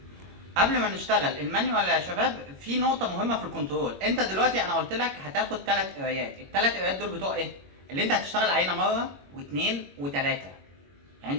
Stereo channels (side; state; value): left; late; 21 ms